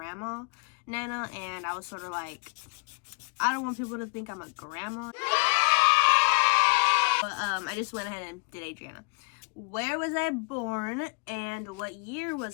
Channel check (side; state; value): right; quieter; 35.4 dB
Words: Nana, and I was sort of like, I don't want people to think I'm a grandma. But I just went ahead and did Adrianna. Where was I born and what year